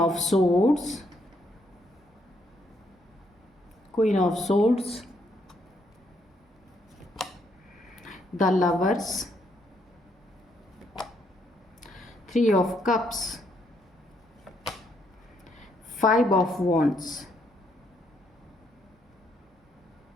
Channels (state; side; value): normal; both; correlation 0.73